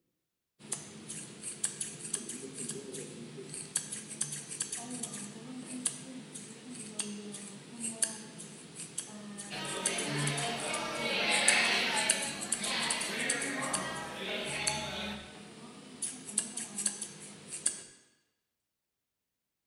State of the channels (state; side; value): identical; both; correlation 1.00